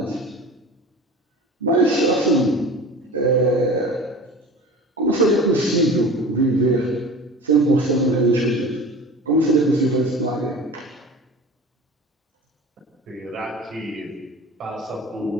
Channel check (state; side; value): normal; both; correlation 0.37